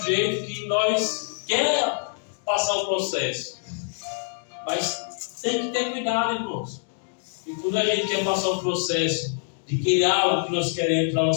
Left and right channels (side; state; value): right; silent; 62 dB below the other